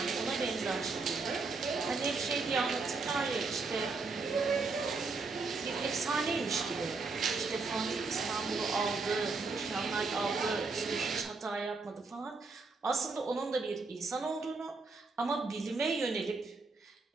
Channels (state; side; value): quieter; left; 4.1 dB